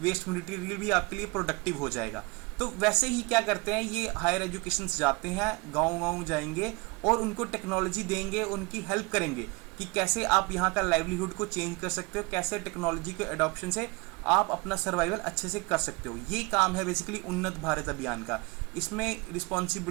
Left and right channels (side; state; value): left; quieter; 26.9 dB